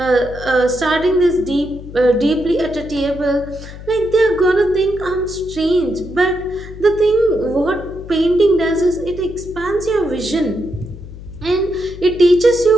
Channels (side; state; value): left; noise; hum, 14 dB below the sound